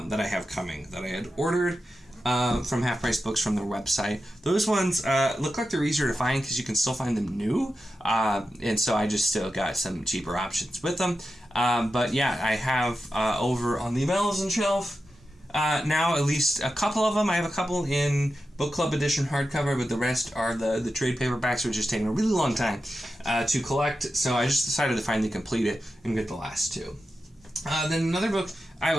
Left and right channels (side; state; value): both; normal; correlation 0.91